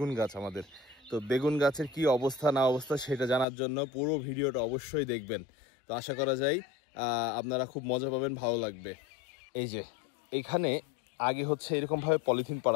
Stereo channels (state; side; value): drops out; right; at 3.5 s